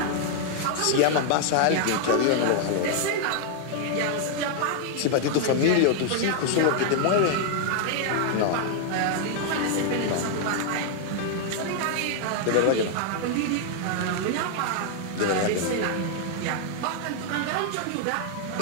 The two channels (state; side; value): different; both; correlation 0.00